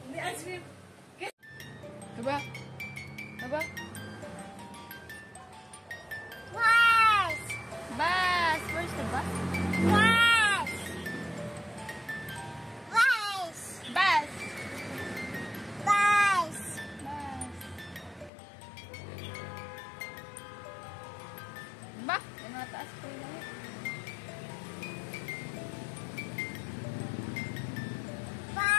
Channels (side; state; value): right; drops out; at 18.3 s